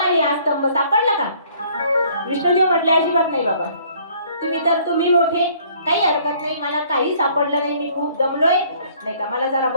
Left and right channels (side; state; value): both; inverted; correlation -0.59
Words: हा स्तंभ, सापडलं का. विष्णुदेव म्हटले अजिबात नाही बाबा, तुम्ही मोठे, काही हरकत नाही, मला काही सापडलं नाही, मी खूप दमलोय, नाही का, मला जरा